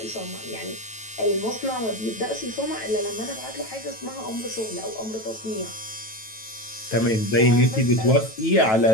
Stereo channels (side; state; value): right; late; 9.1 ms